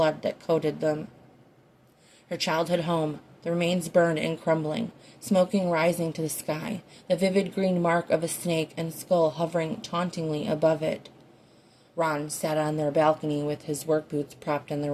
that coated them. Her childhood home, the remains burned and crumbling, smoking rising to the sky, the vivid green mark of a snake and skull hovering tauntingly above it. Ron sat on their balcony with his work boots propped on the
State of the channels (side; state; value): both; identical; correlation 1.00